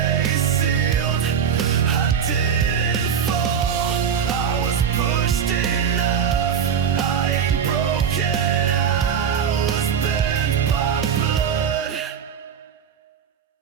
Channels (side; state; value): left; quieter; 7.6 dB